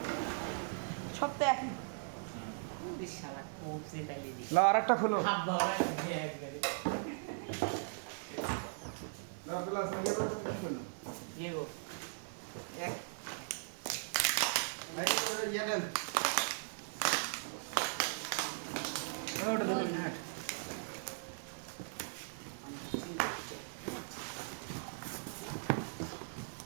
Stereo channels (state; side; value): silent; left; 52 dB below the other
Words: সব তো একই। শালা খুব সেটাই না আরেকটা খুলো হাত বাবা একবারে না প্লাস ইয়ে তো কি করলো ইয়ে গো এক ভাই ইয়ে দেন ওটা দেখুন হ্যাঁ